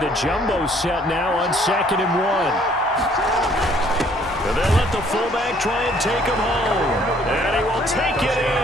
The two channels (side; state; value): both; normal; correlation 0.61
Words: the jumbo set now on 2nd and 1. And they'll let the fullback try and take him home. And he will take it